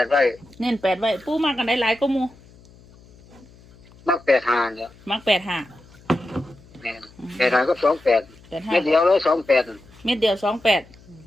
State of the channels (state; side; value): noise; left; hum, 25 dB below the sound